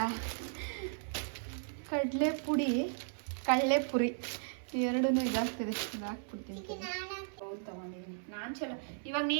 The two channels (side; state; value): left; silent; 54 dB below the other